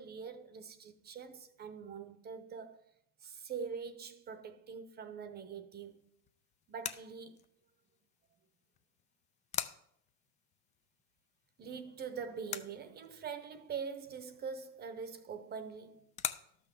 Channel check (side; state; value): both; normal; correlation 0.05